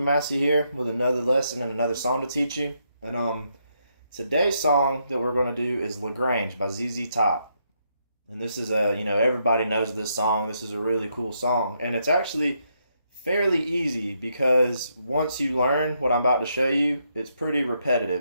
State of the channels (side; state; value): both; inverted; correlation -0.77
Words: here with another lesson and another song to teach you. And today's song that we're going to do is Grange by ZZ Top. And this is everybody knows this song. This is a really cool song. And it's actually fairly easy because once you learn what I'm about to show you, it's pretty